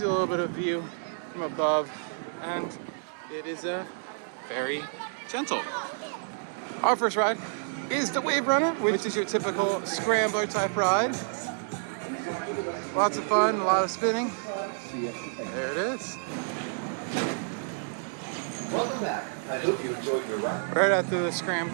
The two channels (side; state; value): left; silent; digital silence